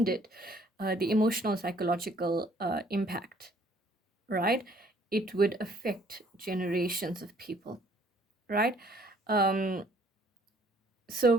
the emotional psychological impact, right, it would affect generations of people, right? Um, so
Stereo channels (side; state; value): both; normal; correlation 0.61